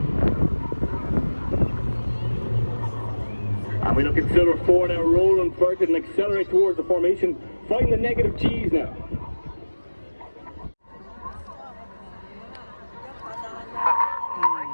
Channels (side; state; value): both; inverted; correlation -1.00